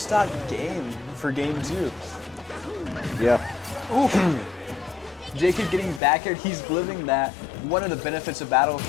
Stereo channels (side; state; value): right; drops out; at 6.0 s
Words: game for game 2. Yeah. Ooh. JKid getting back here, he's living that. One of the benefits of